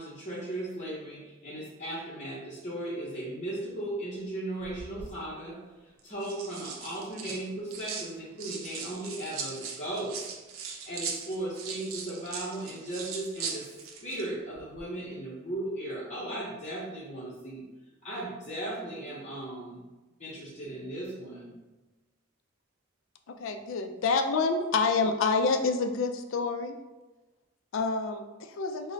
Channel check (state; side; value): normal; both; correlation 0.03